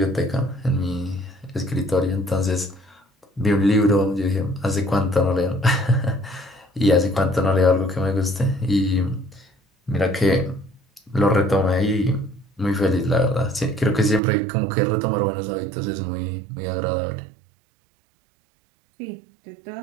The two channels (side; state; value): left; drops out; at 14.2 s